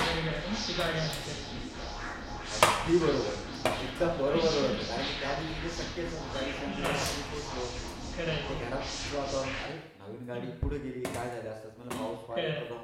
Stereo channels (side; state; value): both; identical; correlation 1.00